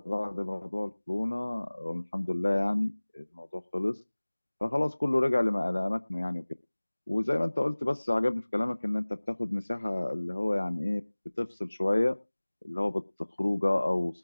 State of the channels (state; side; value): inverted; both; correlation -1.00